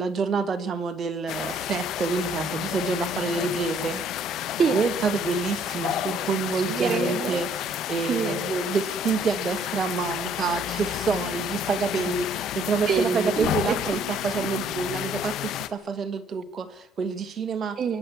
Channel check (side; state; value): both; normal; correlation 0.63